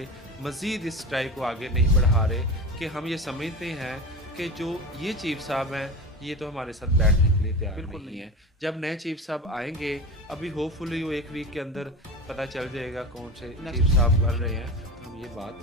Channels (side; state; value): both; normal; correlation 0.28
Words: मज़ीद इस स्ट्राइक को आगे नहीं बढ़ा रहे कि हम ये समझते हैं कि जो ये चीफ साहब हैं ये तो हमारे साथ बैठने के लिए तैयार नहीं है। जब नए चीफ साहब आएंगे, अभी होपफुली वो 1 वीक के अंदर पता चल जाएगा कौन से चीफ साहब कर रहे हैं, हम ये बात